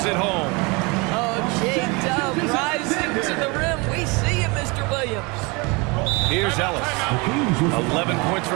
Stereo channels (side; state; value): left; quieter; 27.7 dB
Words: it home. Oh, J-Dub rising to the rim. We see you, Mr. Williams. Here's Ellis. 11 points